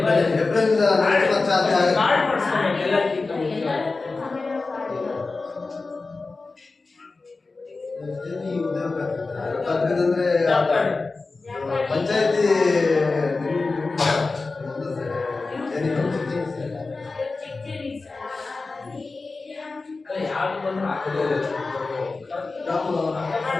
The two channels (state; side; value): quieter; right; 3.8 dB